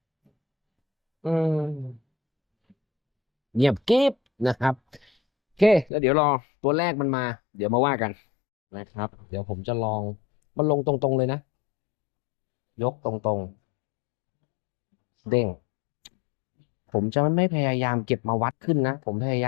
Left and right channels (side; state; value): right; drops out; at 5.9 s